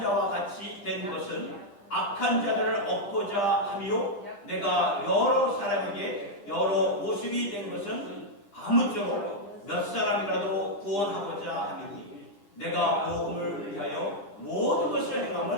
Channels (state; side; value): late; right; 10 ms